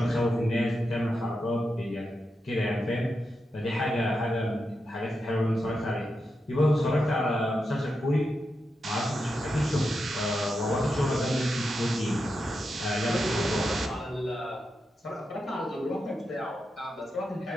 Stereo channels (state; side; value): normal; both; correlation 0.87